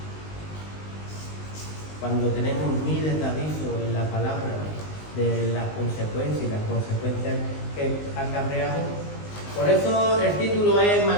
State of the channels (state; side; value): late; right; 19 ms